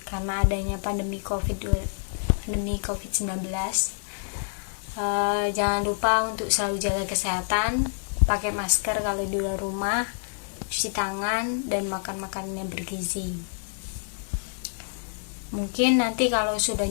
karena adanya pandemi COVID-19. Jangan lupa untuk selalu jaga kesehatan, pakai masker kalau di luar rumah, cuci tangan, dan makan makanan yang bergizi. Mungkin nanti kalau sudah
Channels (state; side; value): silent; right; digital silence